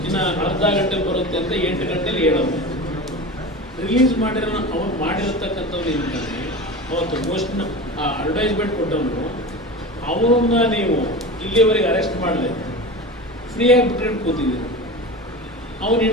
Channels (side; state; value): both; normal; correlation 0.29